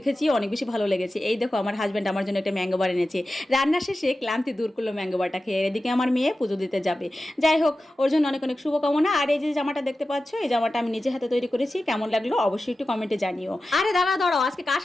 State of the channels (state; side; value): normal; both; correlation 0.94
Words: অনেক বেশি ভালো লেগেছে। এই দেখো আমার হাজব্যান্ড আমার জন্য একটা ম্যাঙ্গো বার এনেছে। রান্না শেষে ক্লান্তি দূর করলো ম্যাঙ্গো বারটা খেয়ে। এদিকে আমার মেয়ে পুজো দিতে যাবে। যাই হোক, ওর জন্য অনেক অনেক শুভকামনা। আর এই যে জামাটা দেখতে পাচ্ছ, এই জামাটা আমি নিজে হাতে তৈরি করেছি। কেমন লাগলো অবশ্যই একটু কমেন্টে জানিও। আরে দাঁড়াও, আজকে কার